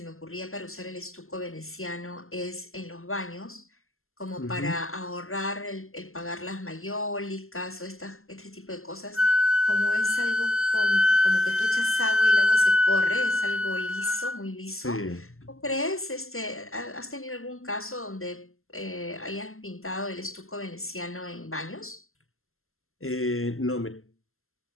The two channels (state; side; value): late; right; 0.62 ms